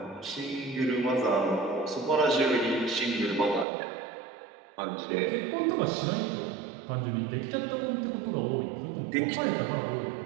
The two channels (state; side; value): drops out; left; at 3.7 s